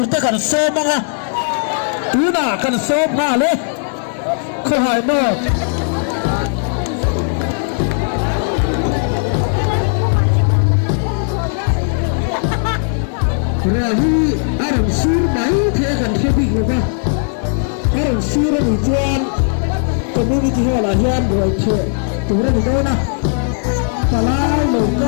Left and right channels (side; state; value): right; silent; digital silence